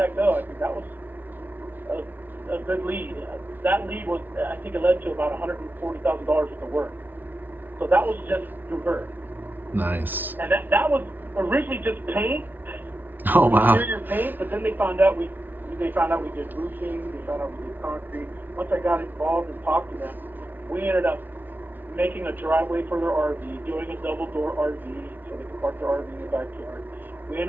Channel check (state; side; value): late; left; 0.088 ms